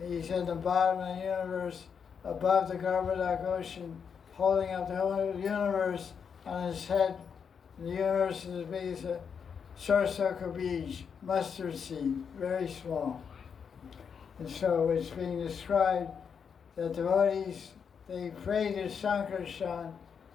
in the bottom of the universe, above the Garbhodak ocean, holding up the whole universe on his head. And the universe is as big as a Sarsaka beach, mustard seed, very small. And so it's being described that devotees, they pray to Sankarshan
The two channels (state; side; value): quieter; right; 6.7 dB